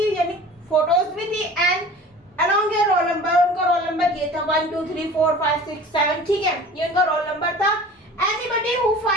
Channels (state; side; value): normal; both; correlation 0.42